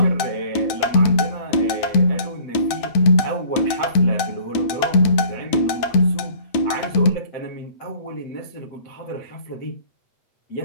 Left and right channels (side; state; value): right; late; 9.1 ms